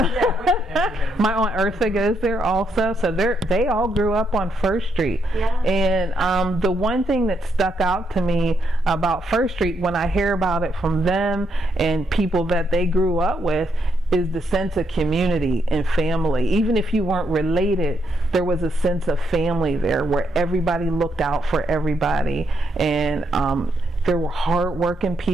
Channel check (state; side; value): normal; both; correlation 0.77